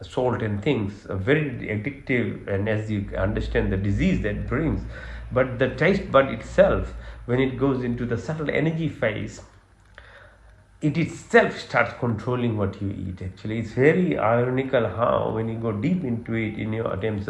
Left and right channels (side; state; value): both; identical; correlation 1.00